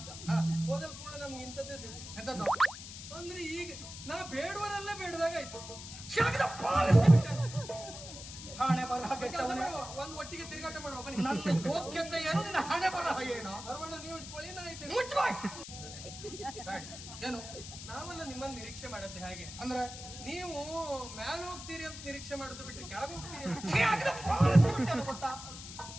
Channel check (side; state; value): left; noise; hiss, 11 dB below the sound